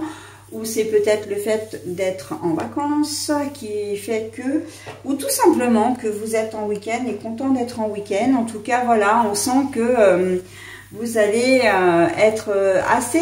ou c'est peut-être le fait d'être en vacances qui fait que, ou tout simplement que vous êtes en week-end et content d'être en week-end. En tout cas, voilà, on sent que vous allez être assez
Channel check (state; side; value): identical; both; correlation 1.00